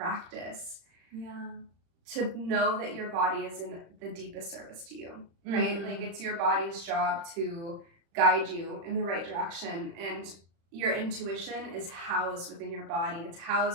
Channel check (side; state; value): left; late; 35 ms